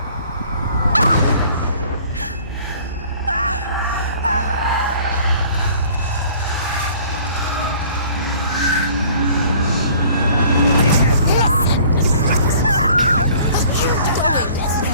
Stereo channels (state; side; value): inverted; both; correlation -0.52